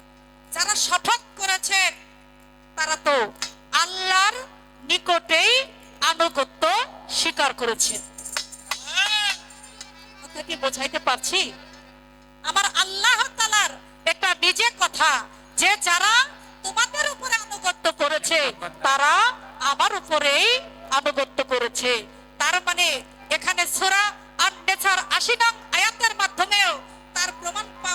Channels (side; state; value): both; identical; correlation 1.00